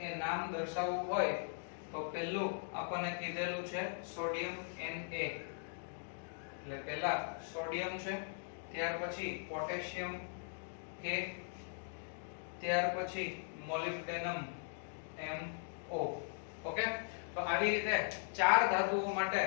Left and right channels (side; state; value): right; silent; digital silence